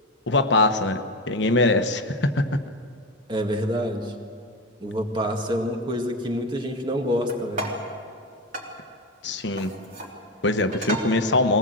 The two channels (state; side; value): normal; both; correlation 0.17